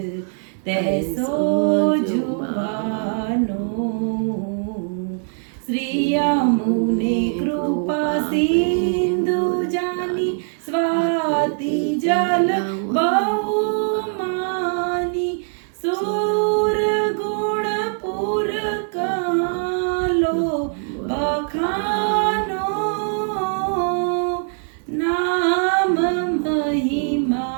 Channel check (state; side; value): silent; left; 65 dB below the other